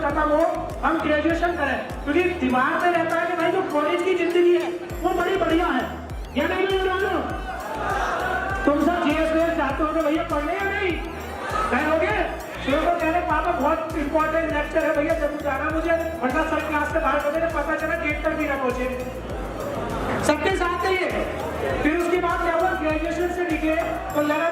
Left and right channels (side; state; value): both; identical; correlation 1.00